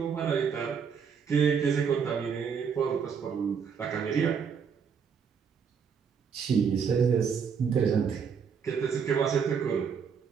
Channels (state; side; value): quieter; left; 6.6 dB